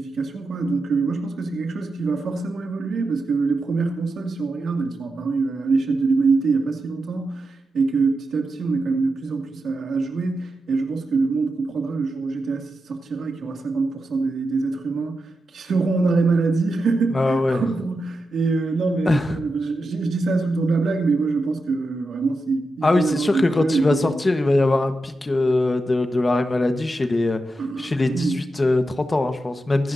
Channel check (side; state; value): both; normal; correlation 0.88